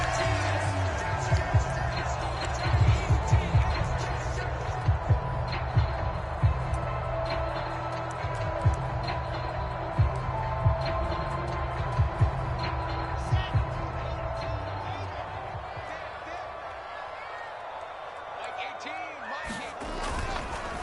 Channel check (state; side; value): identical; both; correlation 1.00